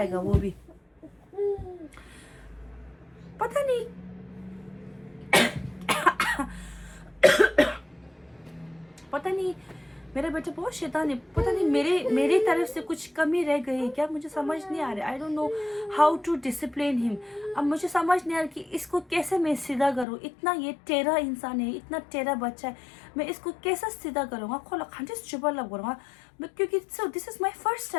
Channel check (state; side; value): drops out; right; at 20.1 s